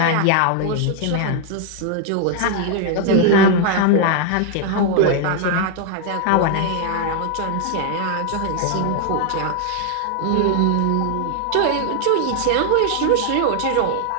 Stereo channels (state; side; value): different; both; correlation 0.00